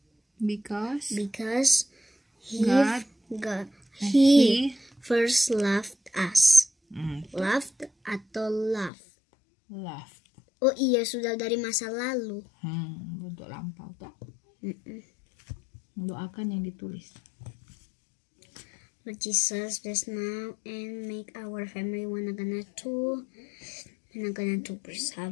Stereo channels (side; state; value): right; drops out; at 8.9 s